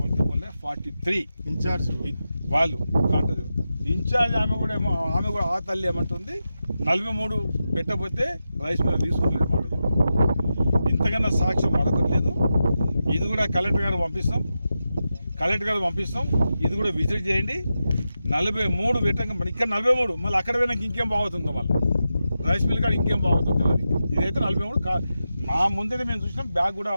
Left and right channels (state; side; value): inverted; both; correlation -0.90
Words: बोले 43 ఇన్ఛార్జ్ వాళ్ళు కాంటాక్ట్ ఇన్ఛార్జ్ ఆమె కూడా ఆ తల్లి ఏమంటుంది 43 పెట్టకపోతే రైస్ మీద తీసుకుంటలేదు మాట చెప్తుంది. ఇంతకన్నా సాక్ష్యం మరొకట్లేదు. ఇది కూడా కలెక్టర్ గారు పంపిస్తాం. ఇది కూడా విజిట్ చేయండి. 43 పెట్టంగా ఇక్కడ 43 మళ్ళీ అక్కడ పోయినాక ఇంకేం బాగుతుందో, మళ్ళీ రైస్ మిల్ కాడ ఇంకేం బాగుతుందో తెలియదు. ఇదైతే 43 మా ముందే మేము చూసినాం, బ్యాగ్ కూడా